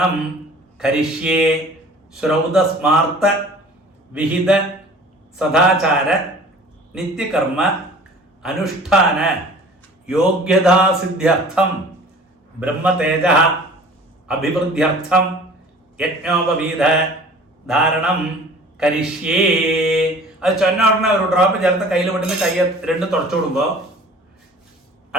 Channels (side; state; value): both; normal; correlation 0.46